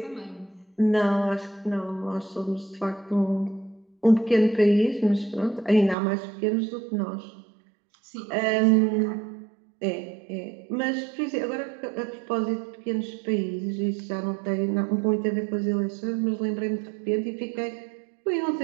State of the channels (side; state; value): left; drops out; at 6.0 s